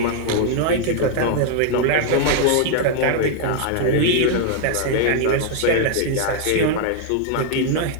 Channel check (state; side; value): different; both; correlation 0.00